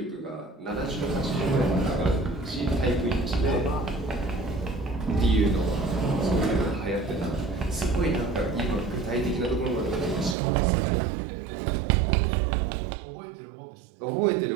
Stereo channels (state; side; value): drops out; left; at 10.4 s